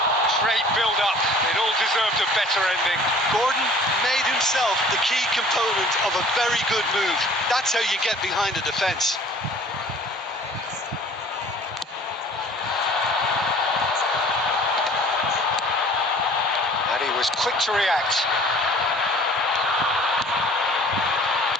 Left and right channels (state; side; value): normal; both; correlation 0.50